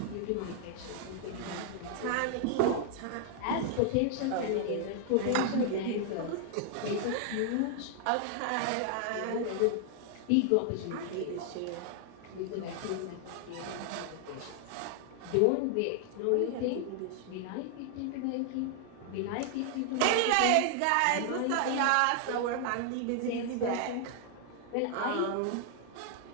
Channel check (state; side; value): different; both; correlation 0.00